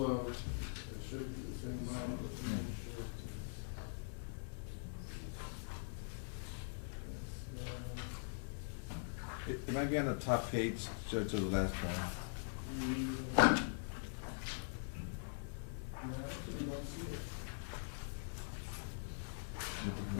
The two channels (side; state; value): right; silent; digital silence